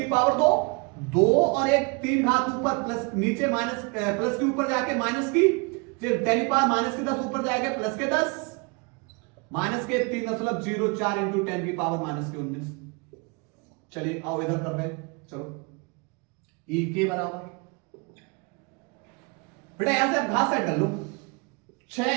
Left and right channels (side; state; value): left; quieter; 31.1 dB